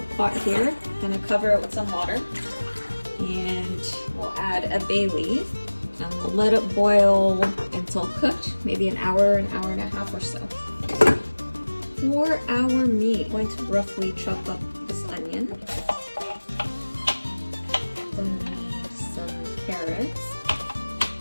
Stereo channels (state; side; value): inverted; both; correlation -1.00